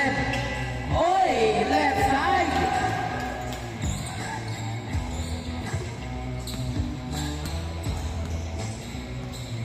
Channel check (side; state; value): both; identical; correlation 1.00